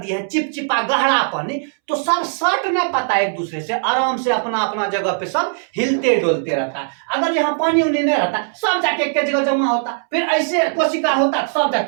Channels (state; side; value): silent; left; 66 dB below the other